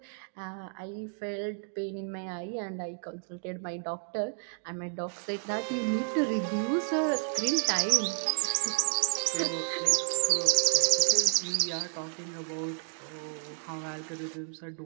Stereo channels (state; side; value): silent; left; 56 dB below the other